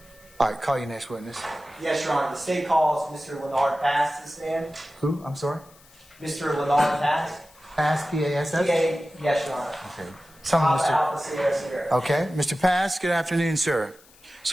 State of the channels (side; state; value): left; noise; hiss, 26 dB below the sound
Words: All right, call your next witness. Yes, Your Honor. The state calls Mr. Leonard Pass to stand. Who? I'm sorry? Mr. Leonard Pass. Pass, P-A-S-S? Yes, Your Honor. Okay. Someone, Alpha Mr. Alpha Sierra Sierra. Okay, Mr. Pass, good afternoon, sir.